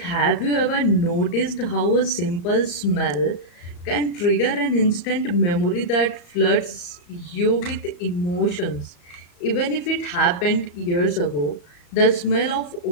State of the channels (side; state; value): right; late; 34 ms